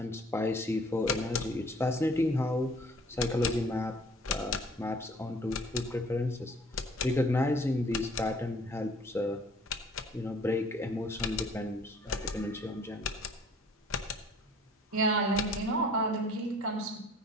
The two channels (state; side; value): normal; both; correlation 0.54